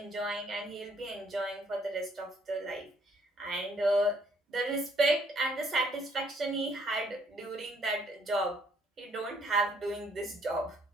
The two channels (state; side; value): normal; both; correlation 0.65